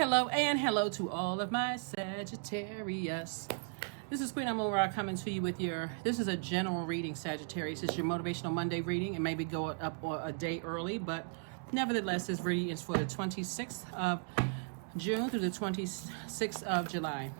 and hello to all of my Sagittarius. This is Queen Amun Ra coming to you with this is a general reading, Sagittarius. It's your Motivational Monday reading. It may be going up a day early, but nevertheless, this reading is for the 26th of June through the 26th of July.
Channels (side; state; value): left; silent; 54 dB below the other